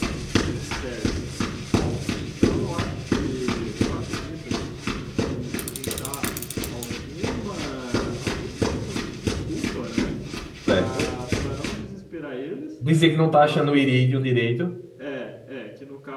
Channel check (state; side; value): identical; both; correlation 1.00